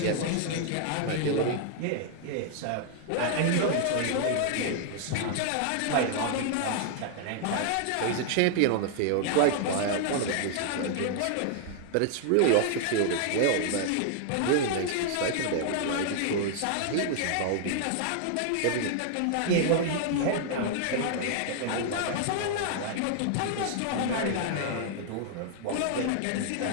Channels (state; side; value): different; both; correlation 0.00